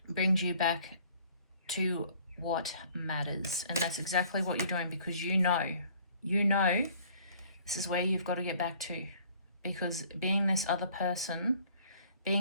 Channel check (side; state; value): both; inverted; correlation -0.56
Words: brings you back to what matters. And that's exactly what you're doing, because you know this is where you've got to get back to. Because being this other person,